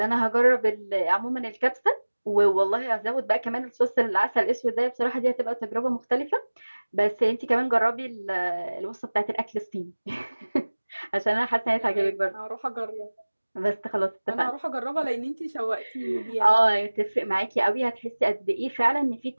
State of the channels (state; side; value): inverted; both; correlation -1.00